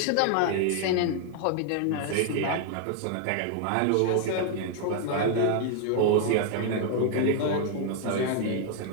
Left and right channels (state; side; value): different; both; correlation 0.00